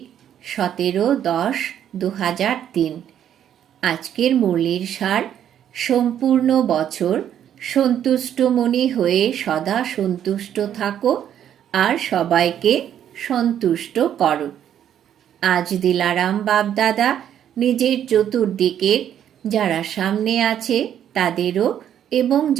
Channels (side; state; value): left; quieter; 10.0 dB